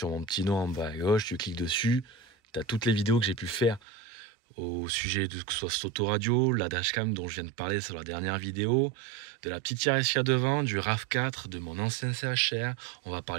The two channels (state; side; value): drops out; left; at 3.8 s